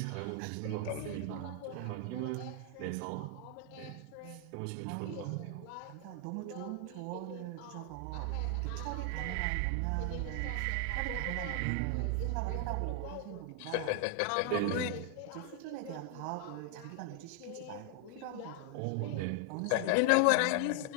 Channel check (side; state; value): both; different; correlation 0.00